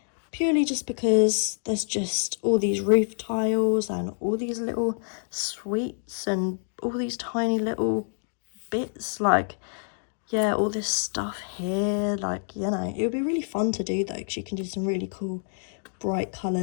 Purely just because there's just all these roof tiles and all these little sweets and all these tiny little bits, like, yeah, all this stuff here, like, you know, it would be really fun to do though, because you can do some really cool bright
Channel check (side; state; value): right; silent; digital silence